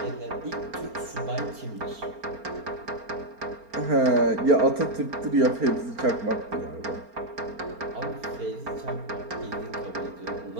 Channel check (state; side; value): late; left; 4.4 ms